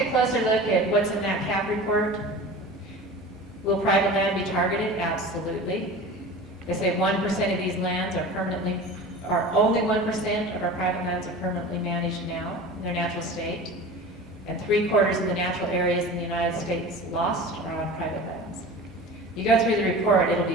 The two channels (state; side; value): normal; both; correlation 0.36